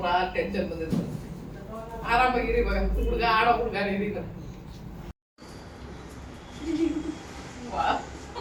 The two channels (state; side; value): identical; both; correlation 1.00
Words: ಟೆನ್ಷನ್ ಬಂದಿರ್ತದೆ. ಆರಾಮಾಗಿರಿ ಇವಾಗ, ಹುಡುಗ ಆಡೋ ಹುಡುಗ ನೀರೀಗ.